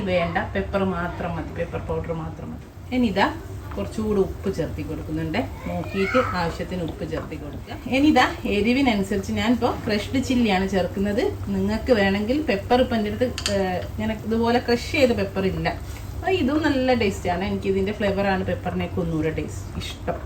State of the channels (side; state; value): both; identical; correlation 1.00